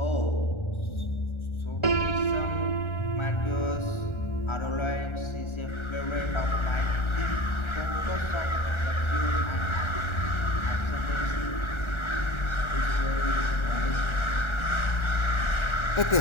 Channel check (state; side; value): late; right; 1.4 ms